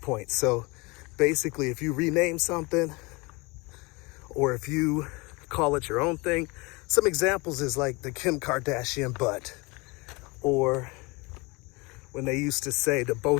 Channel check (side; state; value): right; quieter; 26.2 dB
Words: So basically, if you rename something, or if you call it your own thing, some examples is like the Kim Kardashian butt, or when they used to say the Bo